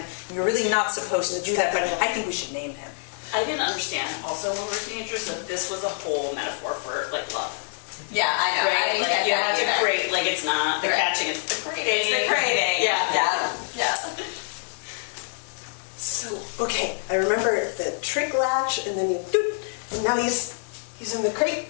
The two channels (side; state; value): right; silent; digital silence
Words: you're really not supposed to do that, but I think we should name him. I didn't understand also when we were teenagers that this was a whole metaphor for, like, love. Yeah, I know. I Right? didn't Like, get you that have to either. crate, like, it's not the Right. catching, it's the crating. It's the crating. Yeah. So, okay, I remember the trick latch, and then you doot, and now you He's in the crate,